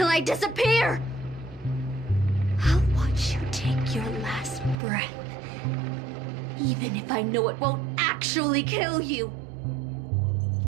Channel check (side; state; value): left; drops out; at 4.8 s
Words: I disappear! I'll watch you take your last breath, even if I know it won't actually kill you.